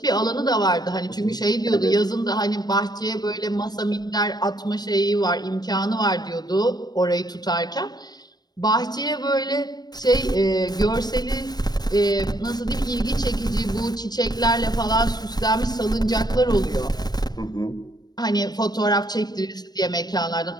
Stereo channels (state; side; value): late; right; 0.19 ms